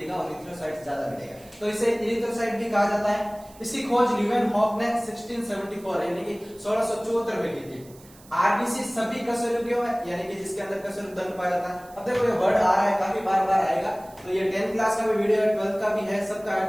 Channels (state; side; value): noise; right; hiss, 24 dB below the sound